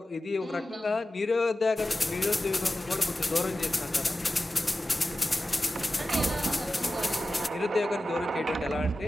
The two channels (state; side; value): normal; both; correlation 0.94